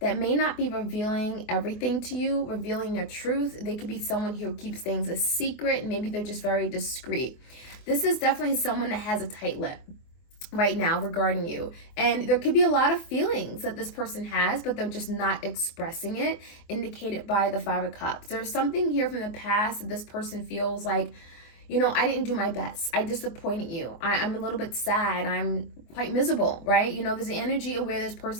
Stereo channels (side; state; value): right; late; 24 ms